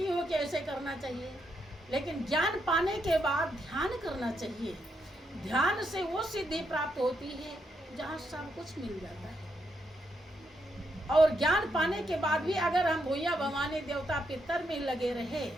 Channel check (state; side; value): normal; both; correlation 0.80